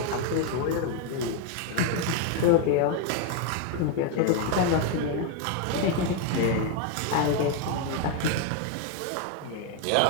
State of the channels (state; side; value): different; both; correlation 0.01